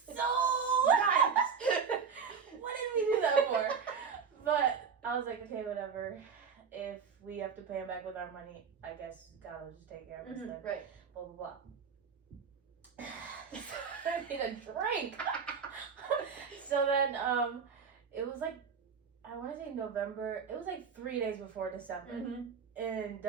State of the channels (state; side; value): quieter; left; 6.2 dB